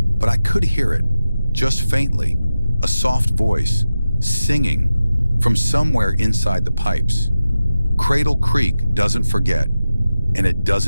but I could hear it, just faintly, a soft voice, singing from somewhere inside the pipes. Cradle Creek doesn't forget, and it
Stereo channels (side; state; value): both; inverted; correlation -0.93